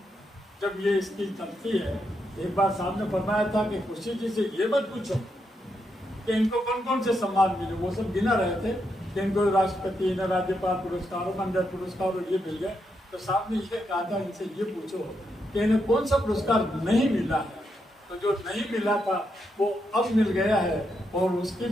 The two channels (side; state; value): both; normal; correlation 0.82